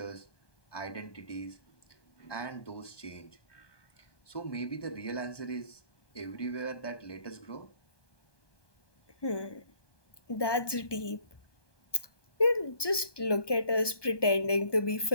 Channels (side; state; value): right; late; 1.2 ms